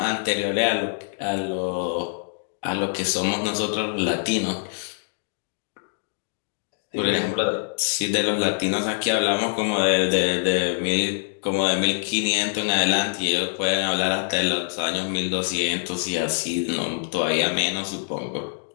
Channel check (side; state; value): right; silent; digital silence